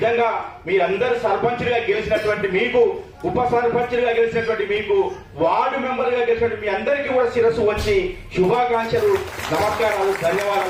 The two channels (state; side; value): identical; both; correlation 1.00